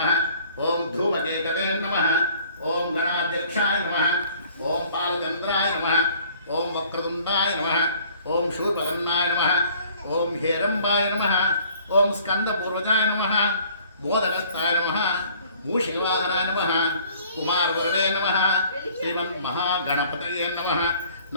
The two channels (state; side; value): inverted; both; correlation -0.55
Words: ఓం ధూమకేతవే నమః, ఓం గణాధ్యక్షాయ నమః, ఓం బాలచంద్రాయ నమః, ఓం వక్రతుండాయ నమః, ఓం శూర్పకర్ణాయ నమః, ఓం హేరంబాయ నమః, ఓం స్కందపూర్వజాయ నమః, మోదకస్థాయ నమః, మూషికవాహనాయ నమః, కుమారవరదే నమః, శ్రీమన్మహాగణపతయే నమః.